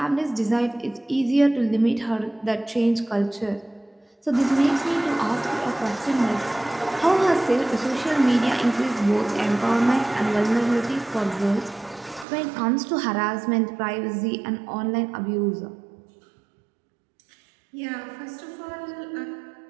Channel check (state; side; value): drops out; left; at 12.2 s